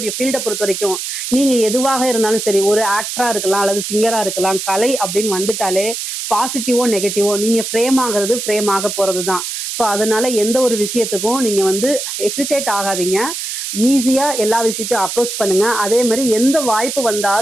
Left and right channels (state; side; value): noise; right; hiss, 5 dB below the sound